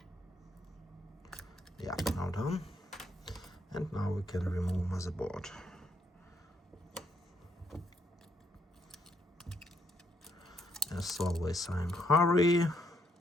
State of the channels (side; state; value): both; normal; correlation 0.74